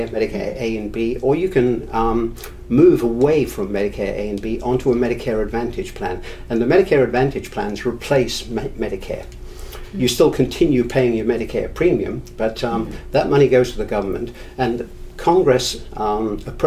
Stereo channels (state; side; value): identical; both; correlation 1.00